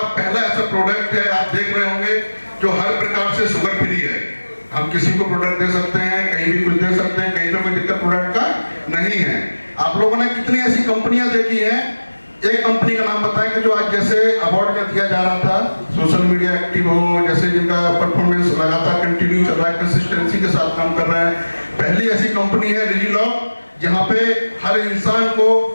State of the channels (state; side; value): inverted; both; correlation -1.00